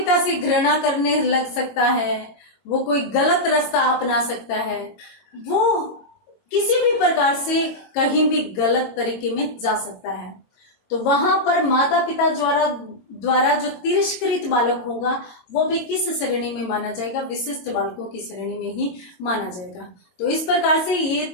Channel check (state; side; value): late; right; 22 ms